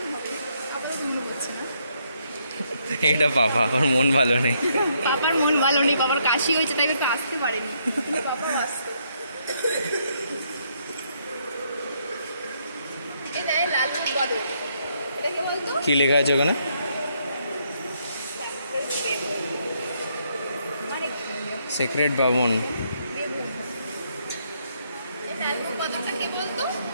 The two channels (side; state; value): both; inverted; correlation -0.73